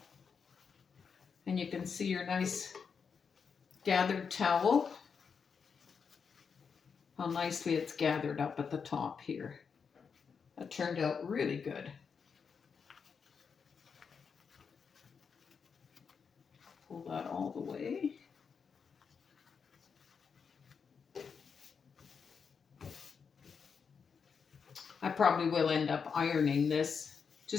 And you can see your nice gathered towel. How nicely it's gathered up at the top here. That turned out really good. Pull that all the way. I probably will end up ironing this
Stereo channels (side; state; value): right; quieter; 6.0 dB